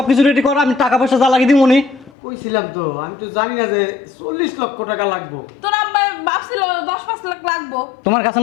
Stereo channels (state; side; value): drops out; right; at 2.1 s